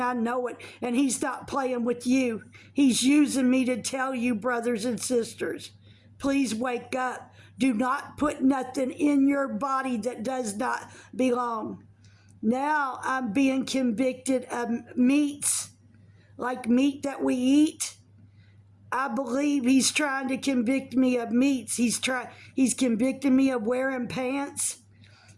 I know it. And He's not playing with you. He's using me to tell you, brothers and sisters, please wake up. Do not put nothing in your body that does not belong. Now I'm being convicted of meats, like meat that we eat. I believe He's trying to convict me of meats. He's convicting me of wearing pants.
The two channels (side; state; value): both; identical; correlation 1.00